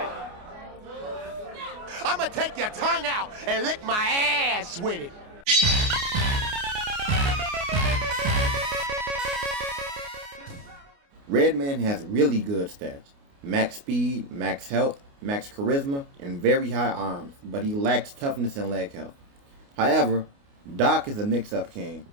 I'ma take your tongue out and lick my ass with it. Redman has really good stats. Max speed, max health, max charisma, and very high arms, but he lacks toughness and leg health. However, Doc is a mix-up king.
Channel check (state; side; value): late; left; 29 ms